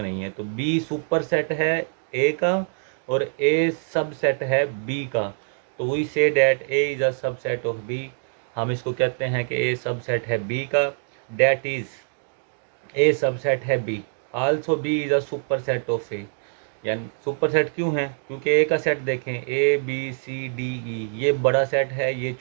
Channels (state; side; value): silent; left; digital silence